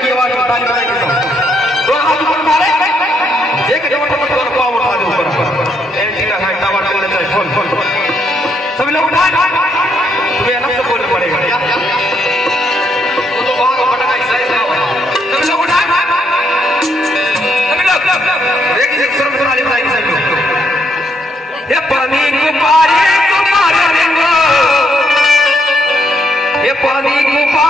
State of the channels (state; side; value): normal; both; correlation 0.74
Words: ही आवाज में ताली बजाएंगे सब। दो हाथ ऊपर उठा ले, एक जब पाँव उठा दे ऊपर, एक है टावर चलने चाहिए, सभी लोग उठाए।